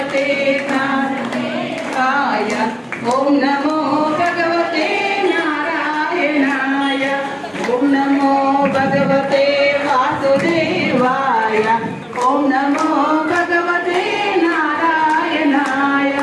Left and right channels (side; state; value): both; identical; correlation 1.00